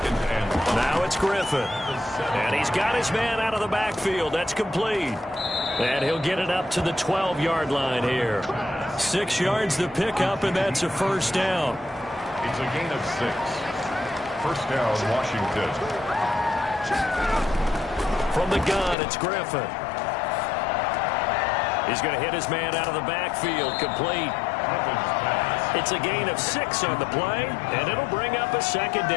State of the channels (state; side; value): drops out; right; at 18.9 s